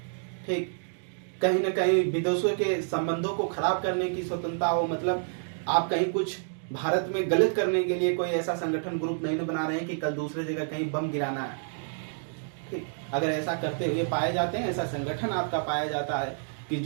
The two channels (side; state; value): left; silent; digital silence